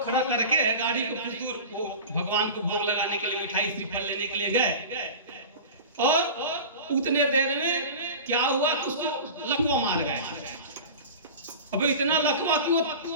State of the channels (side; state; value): both; inverted; correlation -0.33